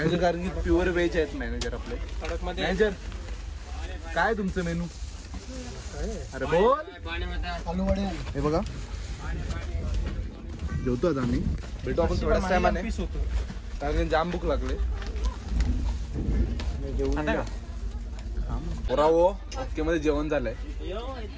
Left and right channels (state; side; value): identical; both; correlation 1.00